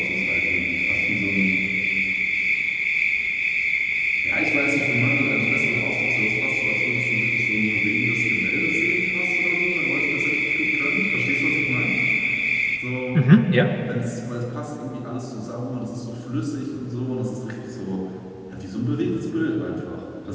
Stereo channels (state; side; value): identical; both; correlation 1.00